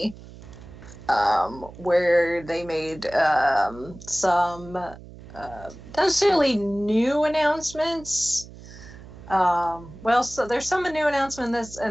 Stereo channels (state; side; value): noise; right; hum, 17 dB below the sound